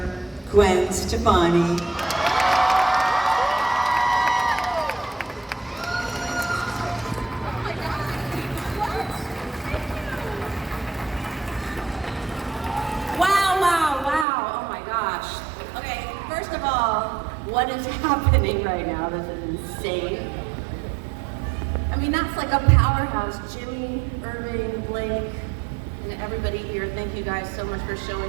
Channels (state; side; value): drops out; left; at 14.2 s